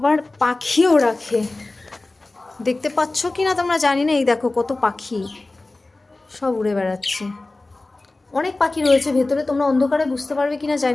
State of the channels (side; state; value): right; quieter; 3.1 dB